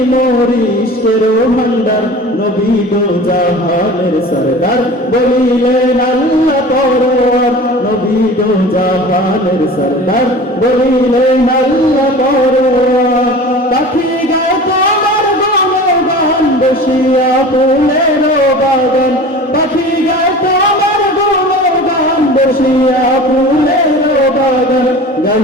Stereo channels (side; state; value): both; normal; correlation 0.38